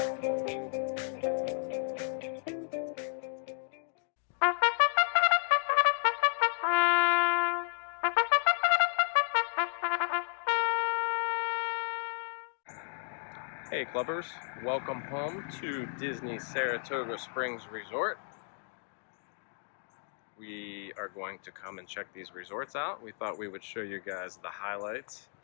clubbers, welcome home to Disney Saratoga Springs Resort. We are going to come and check these resorts out. We thought we would show you guys the highlights,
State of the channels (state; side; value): silent; right; digital silence